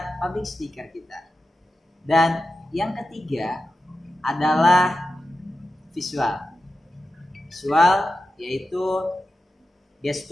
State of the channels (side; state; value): both; normal; correlation 0.91